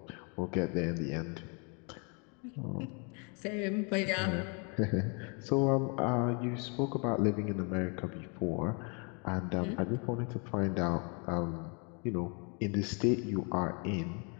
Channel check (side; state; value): right; quieter; 35.0 dB